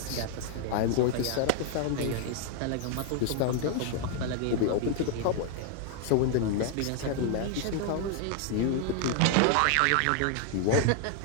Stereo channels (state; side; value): different; both; correlation 0.00